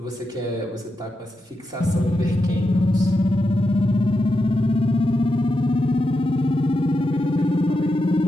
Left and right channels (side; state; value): both; normal; correlation 0.87